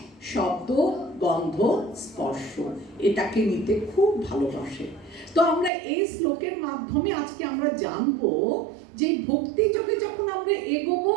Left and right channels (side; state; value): left; drops out; at 5.7 s